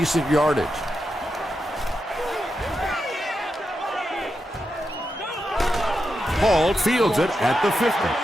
yardage. Hall fields it at the 50.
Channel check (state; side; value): normal; both; correlation 0.87